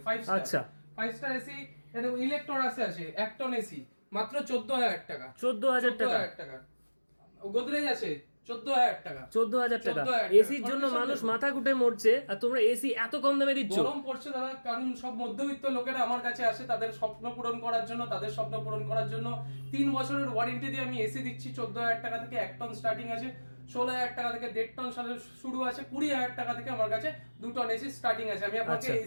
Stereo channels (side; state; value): both; inverted; correlation -1.00